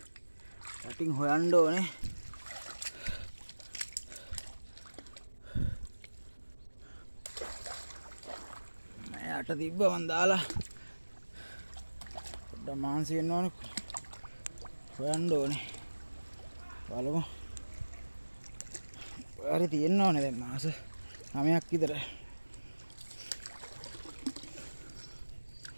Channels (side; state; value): both; inverted; correlation -1.00